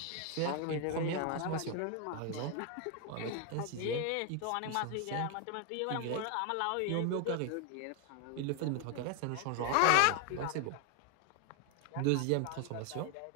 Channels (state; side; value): different; both; correlation 0.01